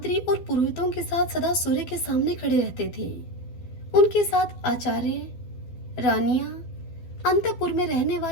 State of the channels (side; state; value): right; late; 12 ms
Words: और पुरोहितों के साथ सदा सूर्य के सामने खड़े रहते थे। उनके साथ आचार्य, रानियां, अंतपुर में रहने